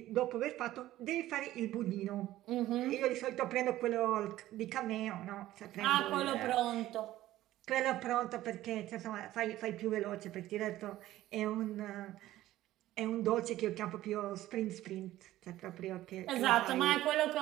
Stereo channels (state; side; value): quieter; left; 14.9 dB